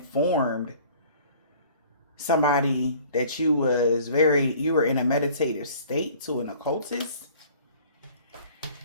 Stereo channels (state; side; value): inverted; both; correlation -0.50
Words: somebody that you were in a meditative state to an occultist.